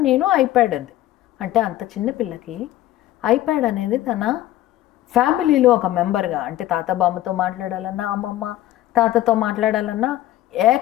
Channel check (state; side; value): quieter; right; 14.5 dB